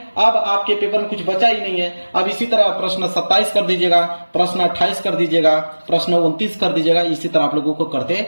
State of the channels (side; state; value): both; inverted; correlation -1.00